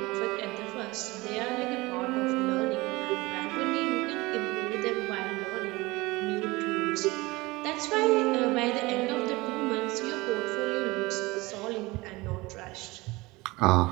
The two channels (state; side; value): quieter; left; 22.0 dB